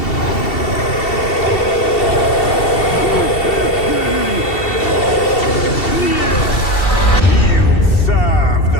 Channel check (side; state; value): right; late; 2.7 ms